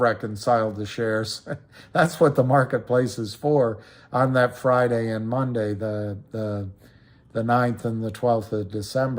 the shares. That's what the marketplace is for on that Friday and Monday, the 9th and the 12th of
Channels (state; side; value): identical; both; correlation 1.00